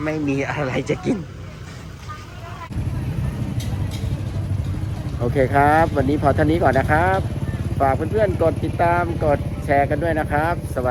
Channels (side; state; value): both; identical; correlation 1.00